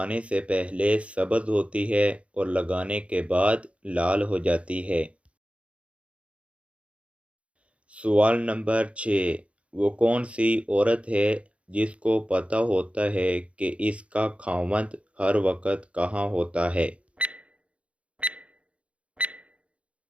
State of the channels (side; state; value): left; late; 0.062 ms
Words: से पहले सब्ज़ होती है और लगाने के बाद लाल हो जाती है। सवाल नंबर 6: वो कौन सी औरत है जिसको पता होता है कि इसका खामद हर वक्त कहाँ होता है?